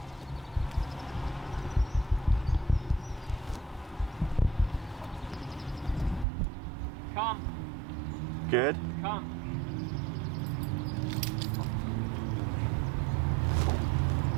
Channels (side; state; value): left; drops out; at 6.2 s